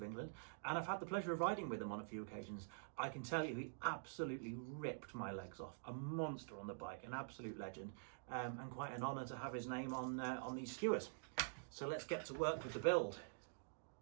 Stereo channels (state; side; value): silent; left; digital silence